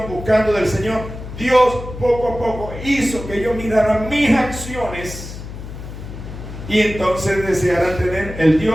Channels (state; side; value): noise; left; hum, 11 dB below the sound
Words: buscando del Señor, Dios poco a poco hizo que yo mirara mis acciones, y entonces deseara tener el